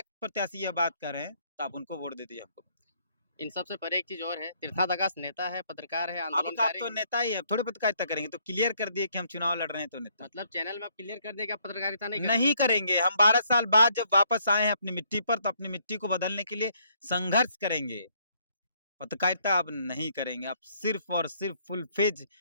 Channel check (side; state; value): both; inverted; correlation -0.68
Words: प्रत्याशी यह बात कर रहे हैं तो आप उनको वोट दे दीजिए हमको। इन सब से परे एक चीज़ और है, तीर्थनाथ आकाश नेता है, पत्रकार है, अब आप आंदोलनकारी तो है। नेता ही है, अब थोड़ी पत्रकारिता करेंगे, तो क्लियर कर दिए कि हम चुनाव लड़ रहे हैं तो नेता मतलब चैनल में आप क्लियर कर दिए कि आप पत्रकारिता नहीं करेंगे। नहीं करेंगे। हम 12 साल बाद जब वापस आए हैं अपनी मिट्टी पर, तो अपनी मिट्टी को बदलने के लिए संघर्ष करेंगे। पत्रकारिता अब नहीं करेंगे, अब सिर्फ और सिर्फ फुल फेज